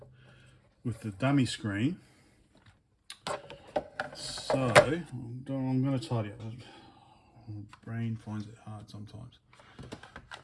dummy screen. So I'm going to tidy up. My brain finds it hard sometimes.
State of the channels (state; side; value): identical; both; correlation 1.00